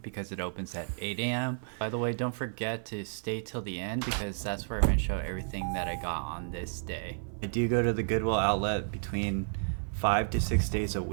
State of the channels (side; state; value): left; silent; 57 dB below the other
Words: it opens at 8 a.m. By the way, don't forget to stay till the end because that's where I'm going to show everything that I got on this day. I do go to the Goodwill outlet between 5 to 6 days a